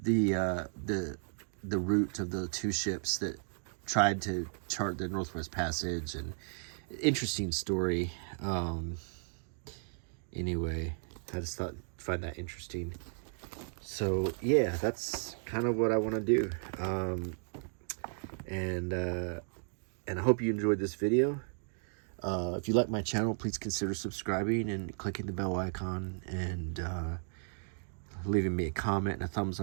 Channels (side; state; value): left; silent; 55 dB below the other